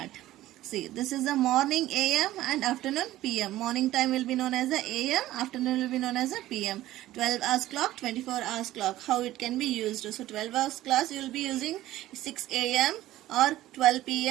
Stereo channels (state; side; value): quieter; left; 15.1 dB